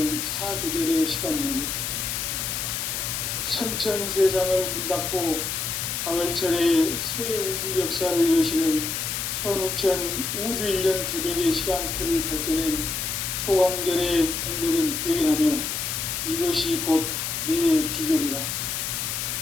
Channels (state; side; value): noise; left; hiss, 2 dB below the sound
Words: 사계절의 시간문이다. 선천 세상을 문닫고 가을철에 새 우주 역사를 여시는 선우천 우주 1년 개벽의 시간틀을 밝혀낸 소강절의 공덕은 대견하며 이것이 곧 내 비결이다.